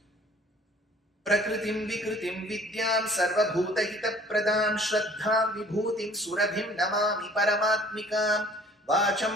Prakritim Vikritim Vidyam Sarvabhuta Hita Pradam Shraddham Vibhutim Surabhim Namami Paramatmikam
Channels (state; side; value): normal; both; correlation 0.53